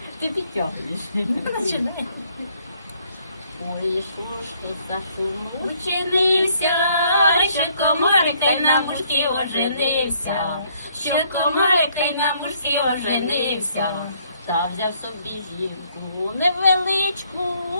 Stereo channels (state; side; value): inverted; both; correlation -0.66